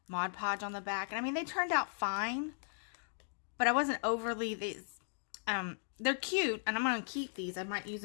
Mod Podge on the back. And I mean, they turned out fine, but I wasn't overly, they're cute and I'm going to keep these. I might use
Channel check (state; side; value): silent; right; digital silence